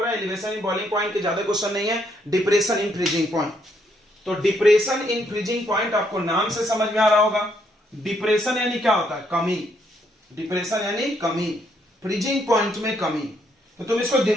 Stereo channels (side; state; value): both; normal; correlation 0.73